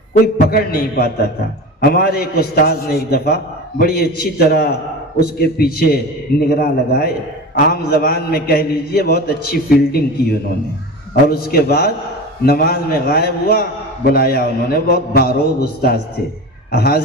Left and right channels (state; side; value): normal; both; correlation 0.30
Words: کوئی پکڑ نہیں پاتا تھا۔ ہمارے ایک استاذ نے ایک دفعہ بڑی اچھی طرح اس کے پیچھے نگراں لگائے، عام زبان میں کہہ لیجئے بہت اچھی فیلڈنگ کی انہوں نے، اور اس کے بعد نماز میں غائب ہوا، بلایا انہوں نے، بہت باروب استاذ تھے،